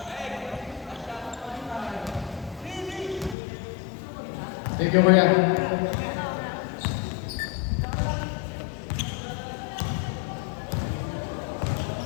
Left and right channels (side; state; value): right; drops out; at 3.4 s